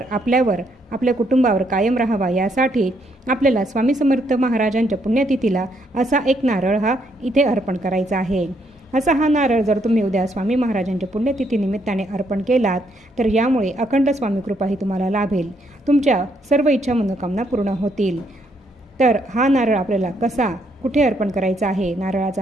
आपल्यावर, आपल्या कुटुंबावर कायम राहावा यासाठी आपल्याला स्वामी समर्थ महाराजांच्या पुण्यतिथीला असा एक नारळ हा इथे अर्पण करायचा आहे। असा हा नारळ जर तुम्ही उद्या स्वामी महाराजांच्या पुण्यतिथी निमित्ताने अर्पण केलात तर यामुळे अखंड स्वामी कृपाही तुम्हाला लाभेल, तुमच्या सर्व इच्छा मनोकामना पूर्ण होतील। तर हा नारळ आपल्याला कसा, कुठे अर्पण करायचा आहे, नारळाचा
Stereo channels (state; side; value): normal; both; correlation 0.73